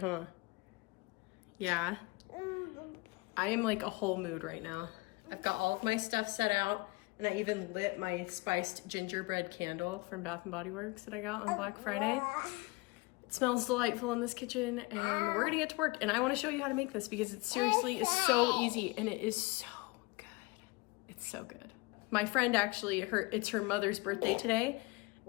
Yeah. I am like a whole mood right now. I've got all of my stuff set out. And I even lit my spiced gingerbread candle from Bath & Body Works that I got on Black Friday. It smells delightful in this kitchen, and we're gonna get to work. And I wanna show you how to make this because it seriously is so easy and it is so good. It's so good. My friend actually, it's her mother's birthday today,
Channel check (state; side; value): quieter; right; 25.0 dB